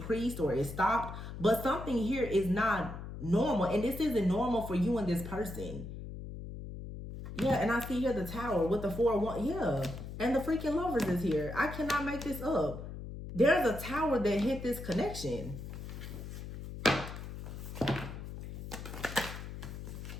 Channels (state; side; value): noise; left; hum, 9 dB below the sound